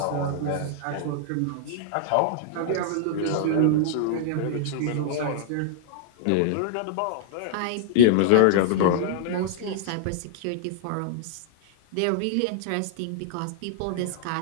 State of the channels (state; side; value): different; both; correlation -0.01